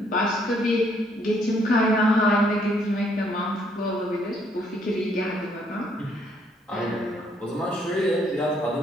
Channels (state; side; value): normal; both; correlation 0.68